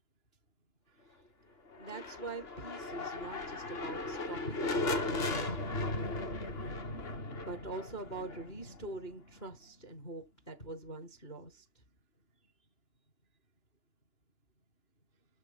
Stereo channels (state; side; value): late; right; 2.9 ms